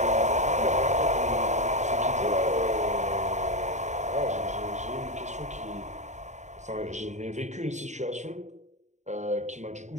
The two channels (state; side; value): late; left; 0.34 ms